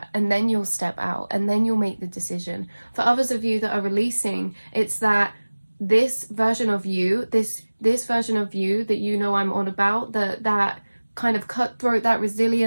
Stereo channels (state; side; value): inverted; both; correlation -1.00